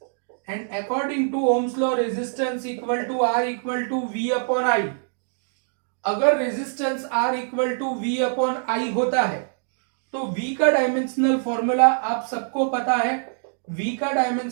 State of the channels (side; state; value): left; silent; digital silence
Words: And according to Ohm's law resistance equal to R equal to V upon I. अगर resistance R equal to V upon I होता है तो V का डायमेंशनल फॉर्मूला आप सबको पता है. V का